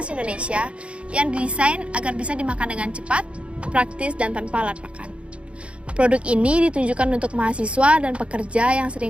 Indonesia yang didesain agar bisa dimakan dengan cepat, praktis, dan tanpa alat makan. Produk ini ditunjukkan untuk mahasiswa dan pekerja yang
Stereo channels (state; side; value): late; left; 0.060 ms